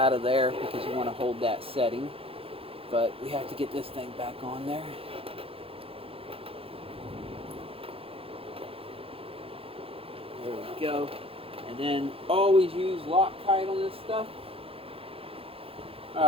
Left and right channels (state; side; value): late; left; 0.27 ms